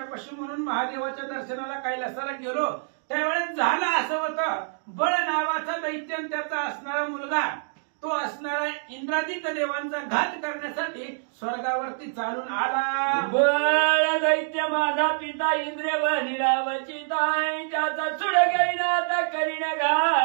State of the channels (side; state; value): left; silent; digital silence